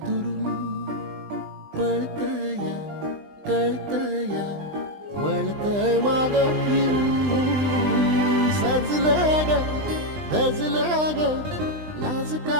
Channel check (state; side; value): late; left; 20 ms